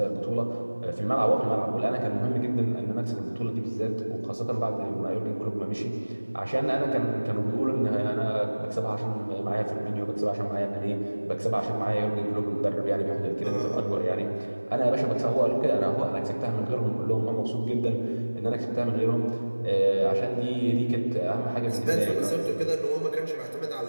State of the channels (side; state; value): both; inverted; correlation -1.00